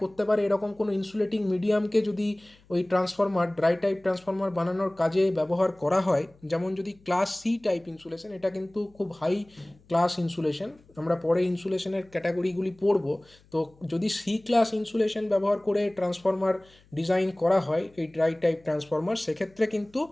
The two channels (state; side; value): noise; left; hum, 30 dB below the sound